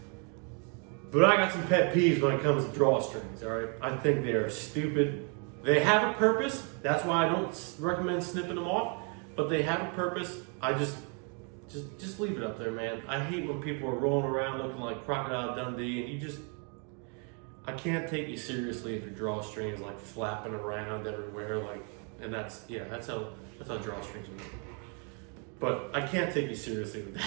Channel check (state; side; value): quieter; left; 37.5 dB